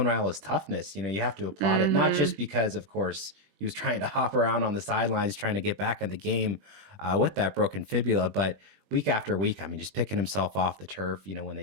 Raiola's toughness, you have to applaud it, not just because, of course, he was trying to hop around on the sidelines, trying to get back in the game with that broken fibula, but week after week, just picking himself off the turf, when they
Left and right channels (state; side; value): late; left; 20 ms